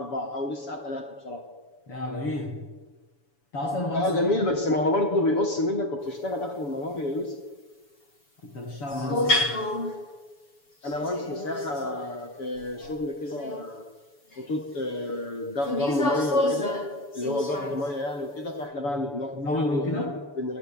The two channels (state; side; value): late; right; 7.0 ms